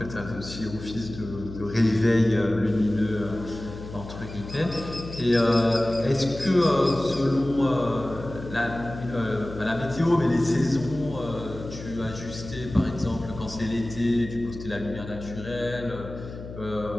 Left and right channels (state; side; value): noise; left; hum, 12 dB below the sound